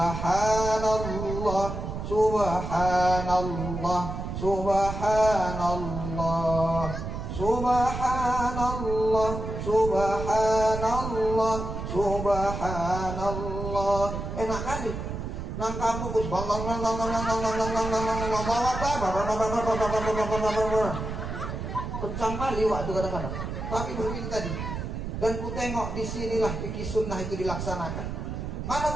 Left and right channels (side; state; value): right; noise; rumble, 5 dB below the sound